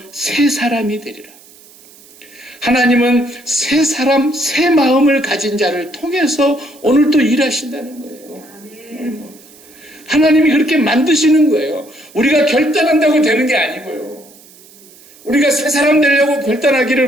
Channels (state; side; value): noise; right; hiss, 24 dB below the sound